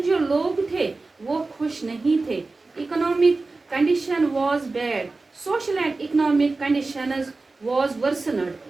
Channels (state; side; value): quieter; left; 3.6 dB